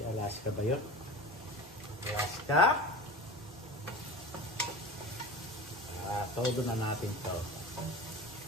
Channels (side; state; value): both; normal; correlation 0.32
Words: Alaska ba yun? Alaska? Todo na natin to.